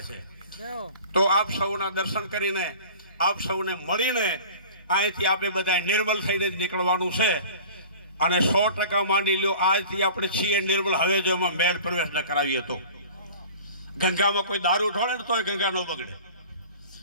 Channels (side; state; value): both; inverted; correlation -0.42